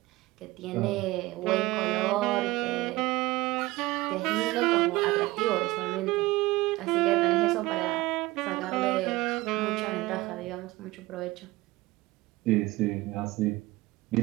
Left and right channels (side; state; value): left; quieter; 19.7 dB